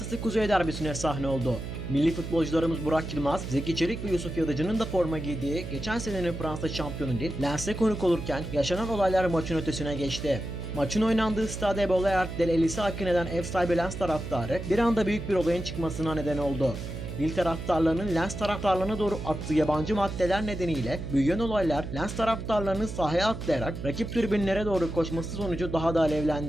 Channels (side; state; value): right; noise; hum, 7 dB below the sound